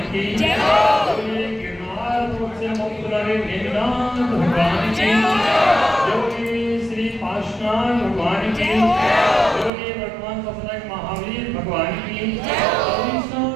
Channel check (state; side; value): drops out; left; at 9.7 s